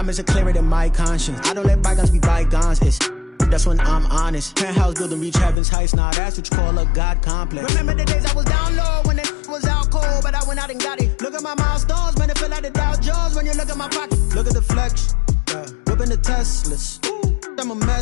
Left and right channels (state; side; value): drops out; right; at 5.6 s